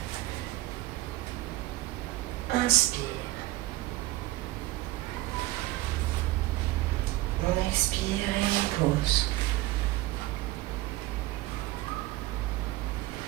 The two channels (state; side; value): quieter; left; 17.7 dB